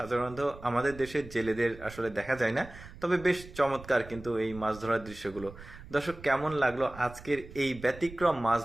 আমাদের দেশের জেলেদের আসলে দেখা যায় না, তবে বেশ চমৎকার কিন্তু এই মাছ ধরার দৃশ্যগুলো। দর্শক, কেমন লাগলো আজকের এই ব্যতিক্রম মাছ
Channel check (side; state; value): right; noise; rumble, 16 dB below the sound